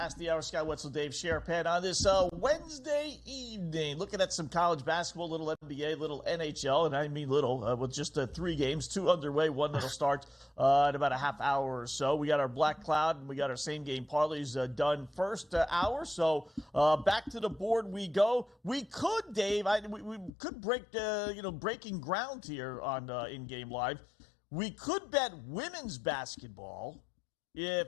the hour. Scott Wetzel, Dave Sharapan on this Wednesday evening. Looking at some college basketball, little NBA, little NHL, and I mean little, with just 3 games, 2 underway, one that'll start in about a half hour or so. We got our Black Cloud and we got our same game parlays done first hour. So back to the board we go. We could, Dave, we could break breaking ground here on In Game Live. We could bet women's basketball if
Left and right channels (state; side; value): drops out; right; at 20.3 s